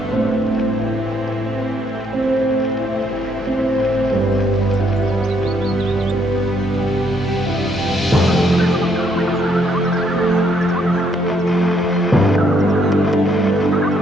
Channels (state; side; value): normal; both; correlation 0.71